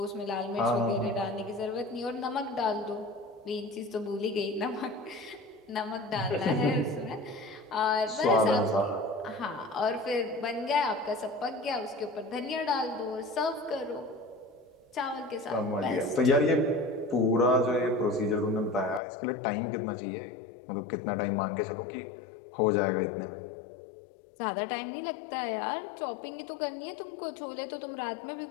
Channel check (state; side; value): drops out; right; at 19.0 s